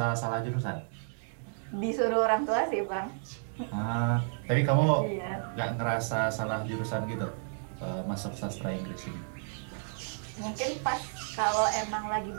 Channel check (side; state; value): left; silent; digital silence